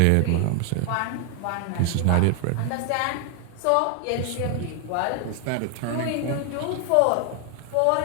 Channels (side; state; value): both; different; correlation 0.00